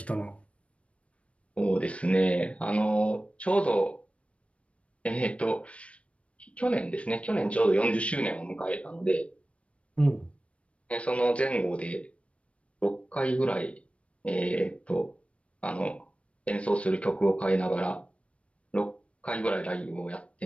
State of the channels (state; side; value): late; right; 0.062 ms